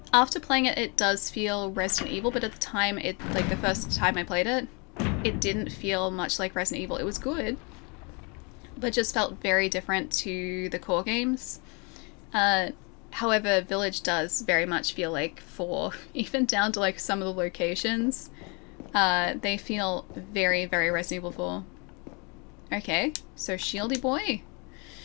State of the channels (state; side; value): quieter; right; 32.0 dB